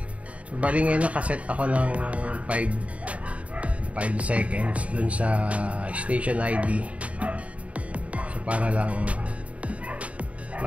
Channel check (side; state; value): left; late; 0.066 ms